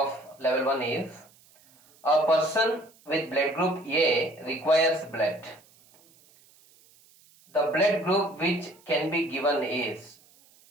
level 1 is, a person with blood group A requires blood. The blood group which can be given is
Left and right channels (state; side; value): noise; right; hiss, 29 dB below the sound